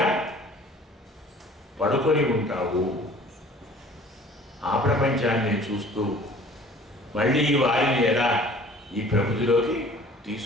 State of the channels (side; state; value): both; normal; correlation 0.50